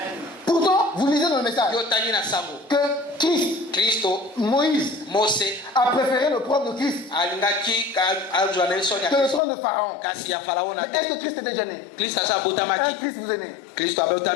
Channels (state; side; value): drops out; right; at 9.4 s